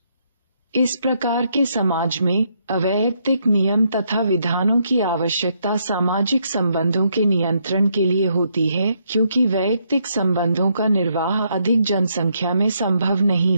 इस प्रकार के समाज में अवैयक्तिक नियम तथा विधानों की आवश्यकता सामाजिक संबंधों के नियंत्रण के लिए होती है, क्योंकि वैयक्तिक संबंधों का निर्वाह अधिक जनसंख्या में संभव नहीं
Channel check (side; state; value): both; inverted; correlation -0.75